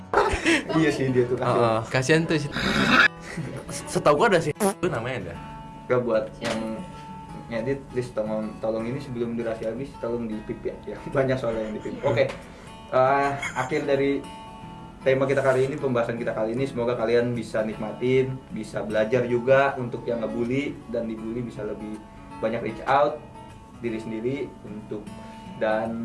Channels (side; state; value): both; identical; correlation 1.00